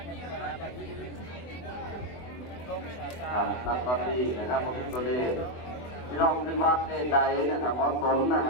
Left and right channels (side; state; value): right; late; 24 ms